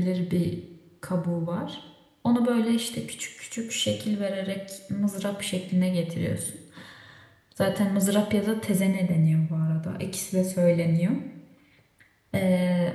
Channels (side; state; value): both; identical; correlation 1.00